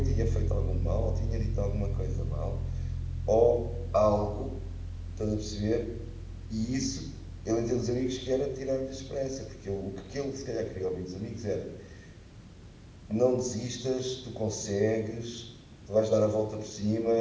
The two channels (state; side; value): identical; both; correlation 1.00